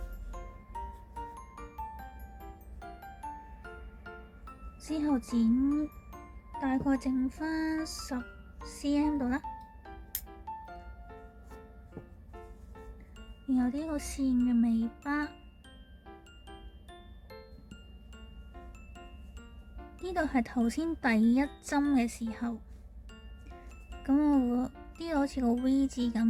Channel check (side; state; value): both; identical; correlation 1.00